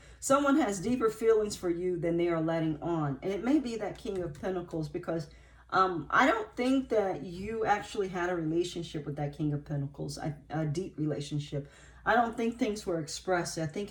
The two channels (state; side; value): identical; both; correlation 1.00